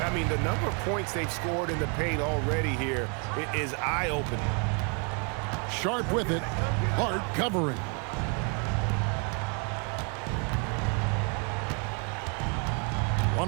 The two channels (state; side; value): quieter; left; 36.9 dB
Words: I mean, the number of points they've scored in the paint already here is eye-opening. Sharp with it. Hart covering.